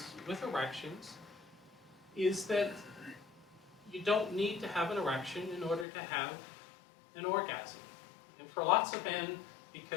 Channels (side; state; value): right; drops out; at 5.9 s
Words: with erections is that you don't need to have an erection in order to have an orgasm. And for lots of men,